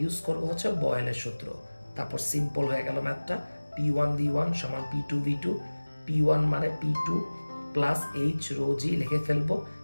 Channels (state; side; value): inverted; both; correlation -1.00